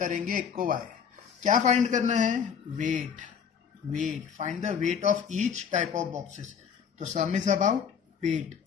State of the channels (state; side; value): quieter; right; 7.2 dB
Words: एक को वाई। क्या फाइंड करना है? Weight. Find the weight of each type of boxes. तो sum is about weight,